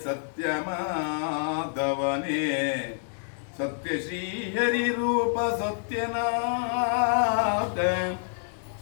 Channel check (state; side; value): silent; right; 58 dB below the other